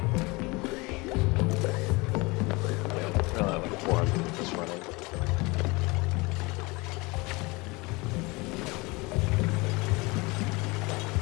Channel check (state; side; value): quieter; right; 25.0 dB